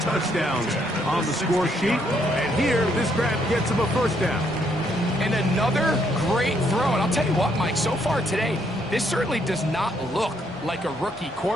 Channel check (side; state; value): both; normal; correlation 0.72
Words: touchdowns on the score sheet. And here, this grab gets him a 1st down. And another great throw. And I'll tell you what, Mike, so far today, this certainly does not look like a rookie